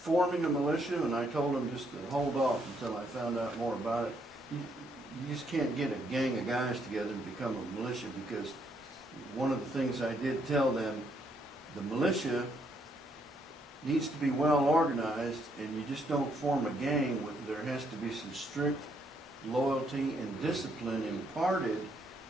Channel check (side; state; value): both; normal; correlation 0.73